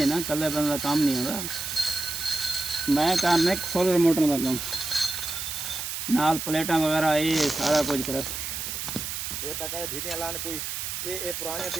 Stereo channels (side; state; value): right; noise; hiss, 5 dB below the sound